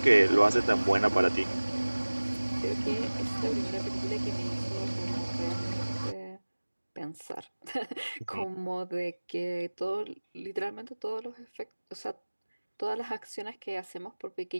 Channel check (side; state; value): both; inverted; correlation -1.00